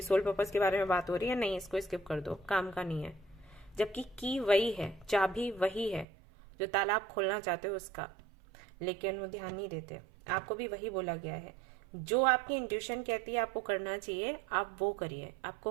सोल पर्पस के बारे में बात हो रही है, नहीं, इसको स्किप कर दो, काम का नहीं है। जबकि की वही है, चाबी वही है जो ताला आप खोलना चाहते हो उसका, लेकिन वो ध्यान नहीं देते। आपको भी वही बोला गया है, जो आपकी इंट्यूशन कहती है आपको करना चाहिए, आप वो करिए,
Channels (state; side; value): drops out; left; at 6.1 s